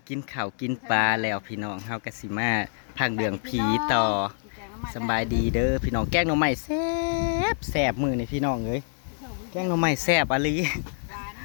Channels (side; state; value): right; silent; digital silence